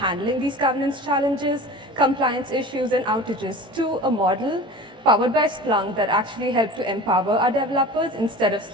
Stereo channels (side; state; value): left; late; 18 ms